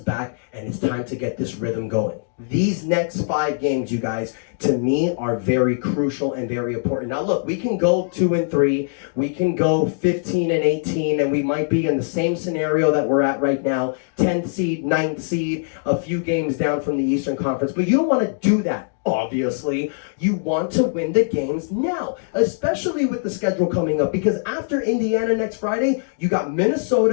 back, and it's time to get this rhythm going. These next 5 games, you guys, to me, are very crucial and very important. Now, look, we can go 2-3. We can go 15-18, and we might be in the same scenario that we're at right now, 10th seed, 9th seed, a few games down from the Eastern Conference. But you don't want to do that. Obviously, you want to win the games now, especially with the schedule coming up, because after Indiana next Friday, you got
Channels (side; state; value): right; silent; digital silence